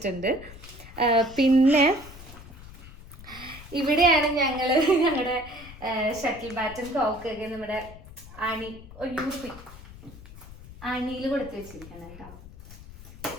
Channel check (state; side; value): noise; left; rumble, 17 dB below the sound